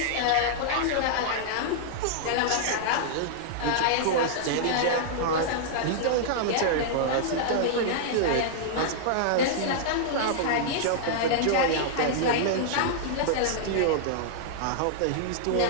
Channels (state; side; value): different; both; correlation -0.01